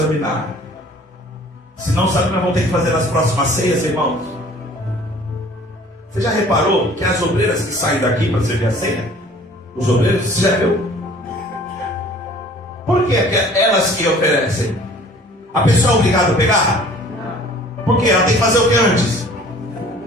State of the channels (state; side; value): normal; both; correlation 0.51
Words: Senão, sabe o que nós vamos ter que fazer nas próximas ceias, irmãos? Você já reparou que as obreiras que saem daqui para servir a ceia? Os obreiros, você já viu? Por que elas que oferecem? A pessoa é obrigada a pegar? Por quê? Ela tem que fazer o que antes?